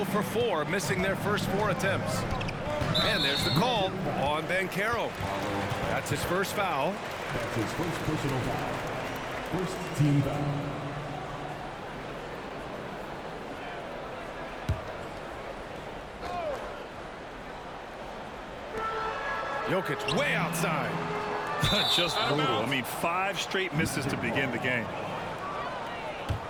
for 4, missing their first 4 attempts. And there's the call on Banchero. That's his first foul. That's his first personal foul. First team foul. Jokic way outside. Just brutal. I mean, 5 straight misses to begin the game.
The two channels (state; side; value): identical; both; correlation 1.00